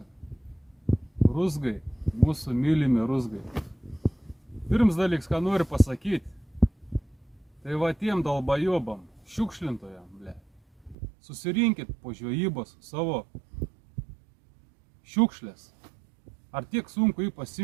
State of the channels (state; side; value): drops out; left; at 11.0 s